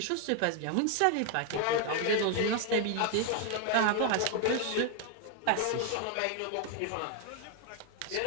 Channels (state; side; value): different; both; correlation 0.01